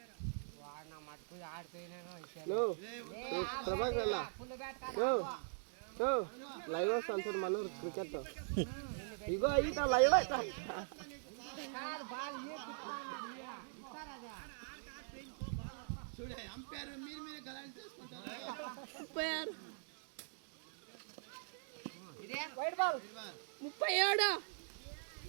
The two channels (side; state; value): left; silent; digital silence